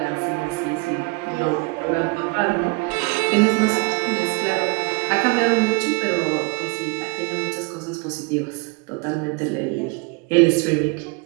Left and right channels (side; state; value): left; quieter; 29.6 dB